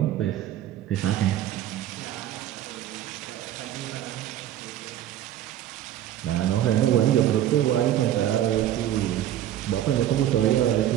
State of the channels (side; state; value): left; quieter; 12.0 dB